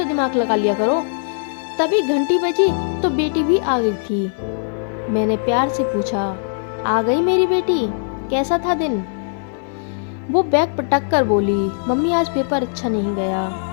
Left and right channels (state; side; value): silent; right; digital silence